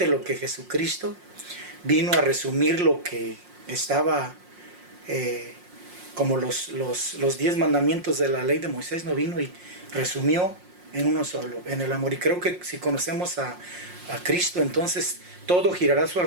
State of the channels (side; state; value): left; late; 5.6 ms